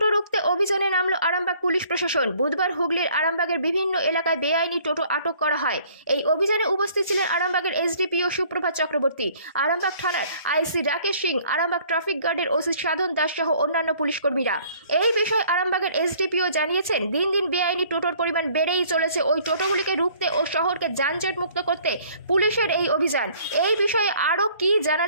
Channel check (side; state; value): both; inverted; correlation -0.57